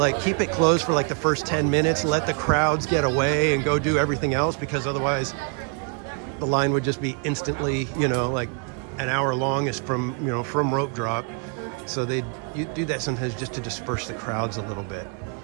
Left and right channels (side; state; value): left; quieter; 37.9 dB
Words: keep it closed for like the first 10 minutes, let the crowds get away and go do everything else, because otherwise the line would just be instantly, like an hour long is from rope drop. So you do that sometimes just to disperse the crowds a little bit.